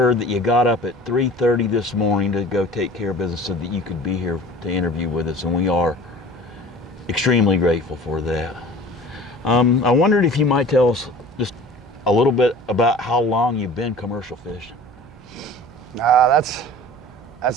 that you got up at 3:30 this morning to go take care of business so that you could be here to interview with us, and we are extremely grateful for that. I wondered if you might tell us just a little bit about how long you've been commercial fishing. That's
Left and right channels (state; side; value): noise; right; hum, 24 dB below the sound